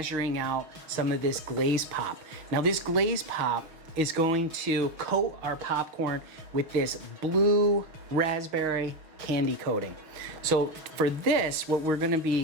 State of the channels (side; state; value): left; late; 6.3 ms